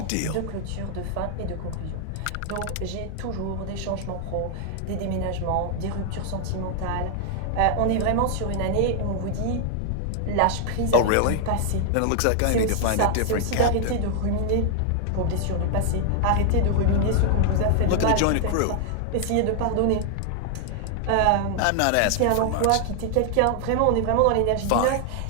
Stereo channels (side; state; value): both; different; correlation 0.00